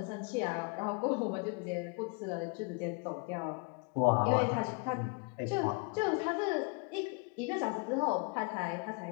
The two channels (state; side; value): quieter; right; 31.7 dB